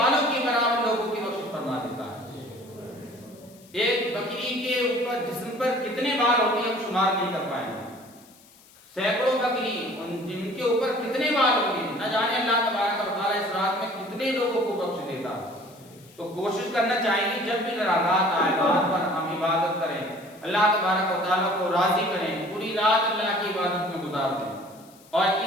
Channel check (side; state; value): left; noise; hiss, 26 dB below the sound